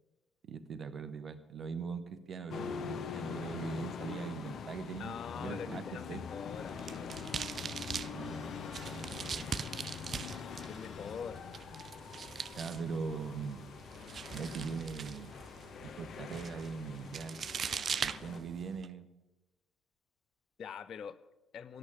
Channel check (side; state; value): both; normal; correlation 0.70